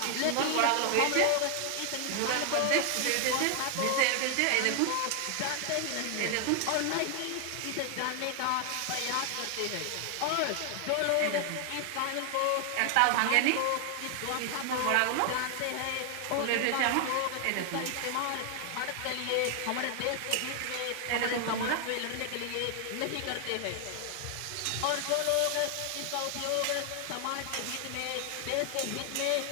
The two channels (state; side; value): different; both; correlation 0.00